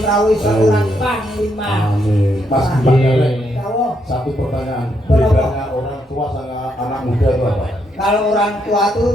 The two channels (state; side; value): normal; both; correlation 0.77